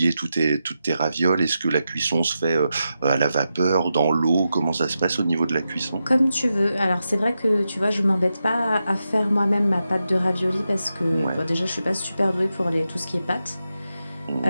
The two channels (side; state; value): both; inverted; correlation -0.88